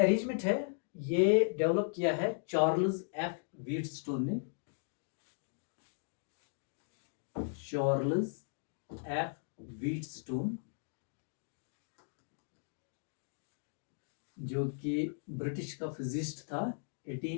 है ये डेवलप किया है चार्ल्स एफ व्हीटस्टोन ने. चार्ल्स एफ व्हीटस्टोन जो कि ब्रिटिश का फिजिस्ट था,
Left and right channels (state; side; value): silent; right; digital silence